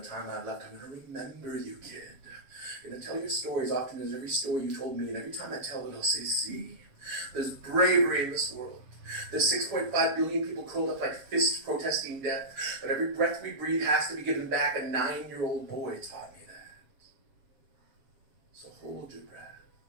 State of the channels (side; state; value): left; late; 7.4 ms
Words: time I have left, I'm going to remember you, kid. I'm going to tell your stories often as every story you told me, and every time I tell it, I'll say, see, there's bravery in this world. There's 6.5 billion people curled up like fists protesting death, but every breath we breathe has to be given back. A 9-year-old boy taught me that. So hold your breath.